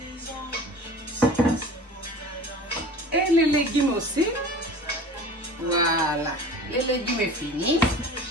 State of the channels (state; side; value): normal; both; correlation 0.40